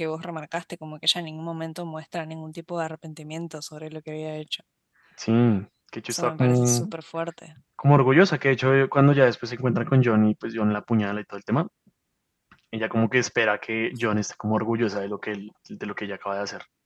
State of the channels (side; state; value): both; identical; correlation 1.00